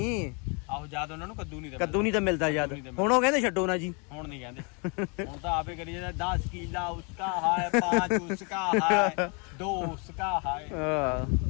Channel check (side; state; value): right; quieter; 34.5 dB